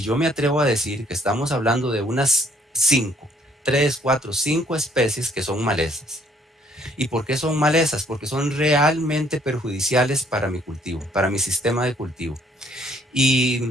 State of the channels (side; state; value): both; normal; correlation 0.63